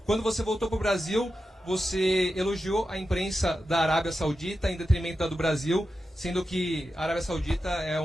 Quando você voltou para o Brasil, você elogiou a imprensa da Arábia Saudita em detrimento da do Brasil, sendo que a Arábia Saudita é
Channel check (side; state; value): both; normal; correlation 0.90